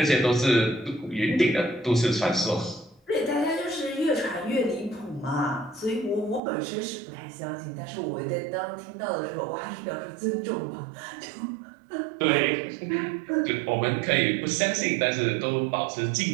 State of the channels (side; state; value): left; drops out; at 6.4 s